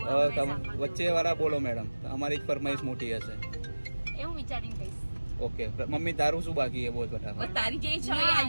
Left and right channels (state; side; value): inverted; both; correlation -1.00